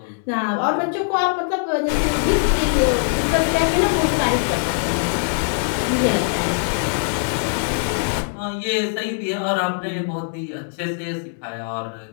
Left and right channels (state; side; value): silent; right; digital silence